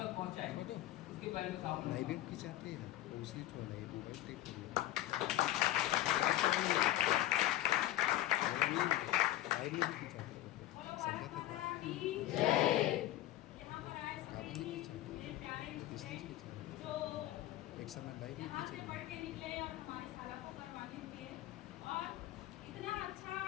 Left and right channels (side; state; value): right; quieter; 14.7 dB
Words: पहुँचाएंगे। उसके बारे में साहू मैडम की चाहते हैं दूसरी एक समय लाइव में यहाँ से पढ़ के निकले और हमारे साला को करवाने दिए और इतना अच्छा